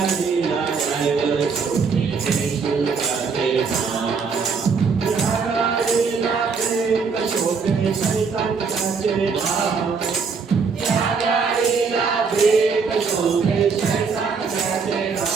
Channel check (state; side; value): quieter; left; 5.3 dB